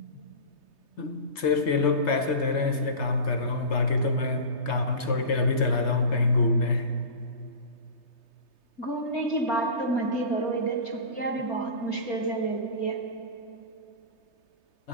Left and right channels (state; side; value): late; right; 3.3 ms